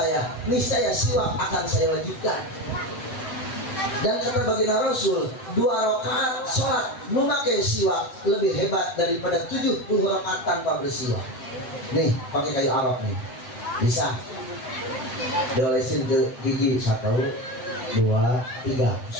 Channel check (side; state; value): right; late; 7.9 ms